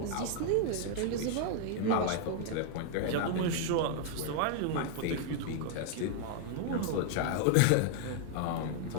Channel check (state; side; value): different; both; correlation 0.00